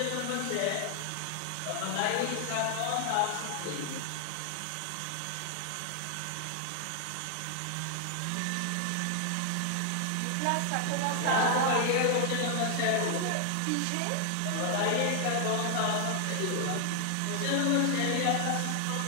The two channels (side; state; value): both; different; correlation 0.00